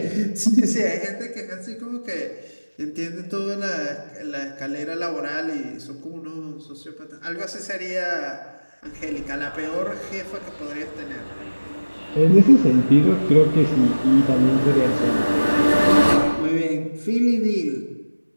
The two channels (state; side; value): inverted; both; correlation -1.00